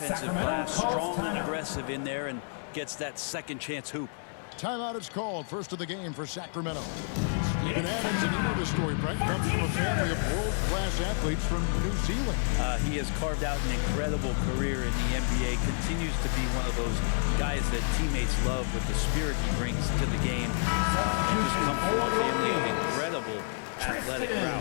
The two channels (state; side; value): silent; right; 58 dB below the other